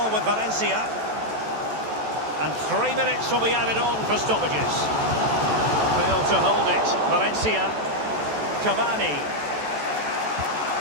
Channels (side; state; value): left; late; 14 ms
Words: with Valencia. And 3 minutes will be added on for stoppages. Failed to hold it. Valencia. Cavani.